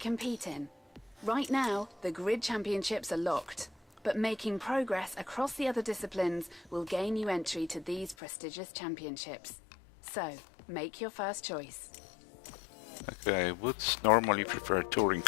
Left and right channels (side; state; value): right; drops out; at 8.2 s